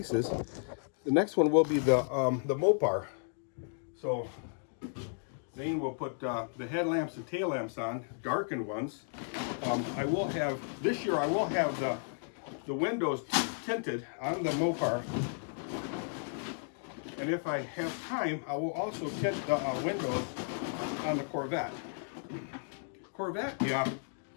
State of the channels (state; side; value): silent; right; digital silence